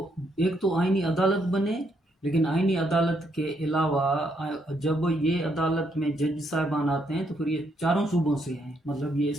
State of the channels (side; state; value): both; normal; correlation 0.75